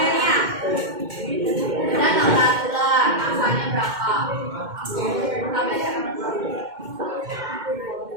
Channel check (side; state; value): left; late; 2.1 ms